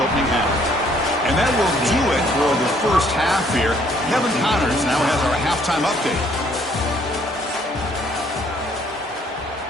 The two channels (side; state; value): both; normal; correlation 0.64